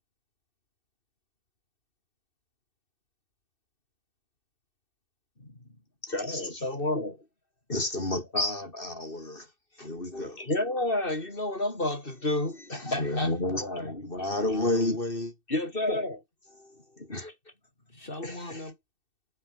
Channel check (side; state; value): right; late; 2.6 ms